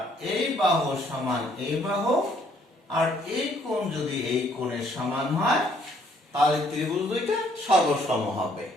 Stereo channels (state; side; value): normal; both; correlation 0.66